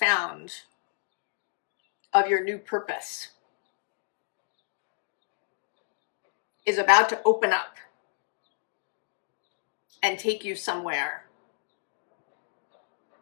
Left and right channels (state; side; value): silent; right; digital silence